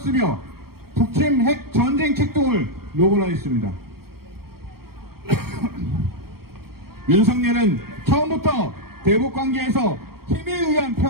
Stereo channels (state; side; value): late; left; 0.94 ms